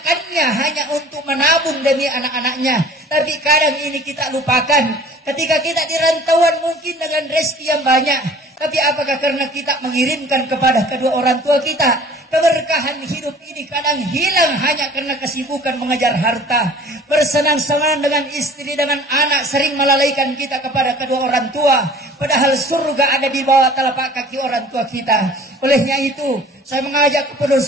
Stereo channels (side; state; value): both; normal; correlation 0.48